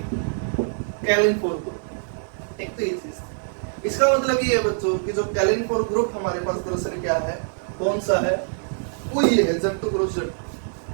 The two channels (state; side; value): silent; left; digital silence